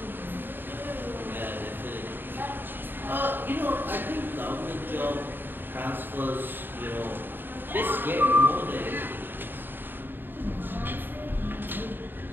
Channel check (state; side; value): late; left; 0.095 ms